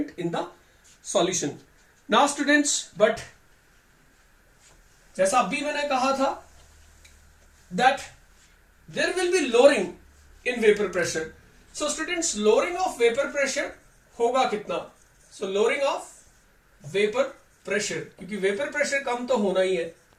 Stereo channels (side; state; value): both; identical; correlation 1.00